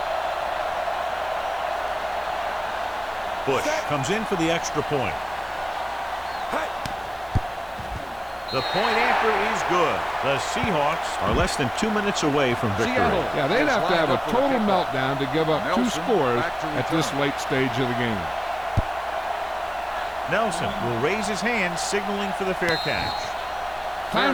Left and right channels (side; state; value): both; identical; correlation 1.00